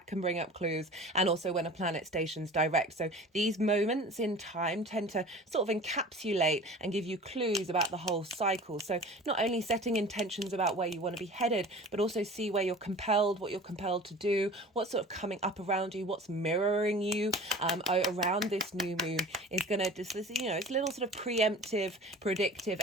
can bring up clues. And also when a planet stations direct. So these moments in time tend to sort of encapsulate and give you clues about the whole cycle. So not only setting intentions about where you want to be headed, but also see where you're compelled, what you're compelled to do, what's sort of coming up around you, what's mirroring you around this new moon is going to just, you know, it's a little sort of preemptive, predictive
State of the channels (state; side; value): normal; both; correlation 0.41